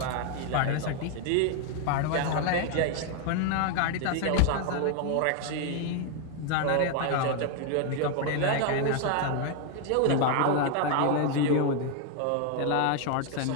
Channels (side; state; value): both; different; correlation 0.01